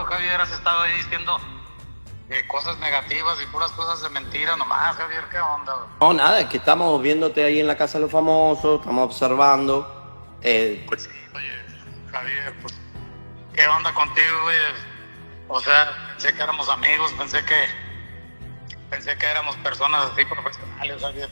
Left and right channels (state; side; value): inverted; both; correlation -1.00